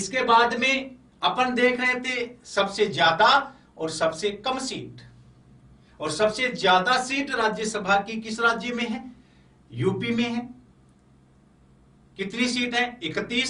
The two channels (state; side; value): identical; both; correlation 1.00